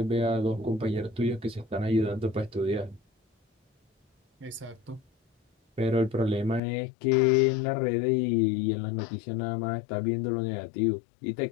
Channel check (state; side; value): drops out; right; at 6.6 s